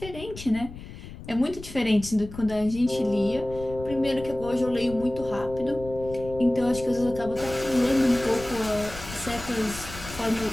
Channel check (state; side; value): noise; left; rumble, 13 dB below the sound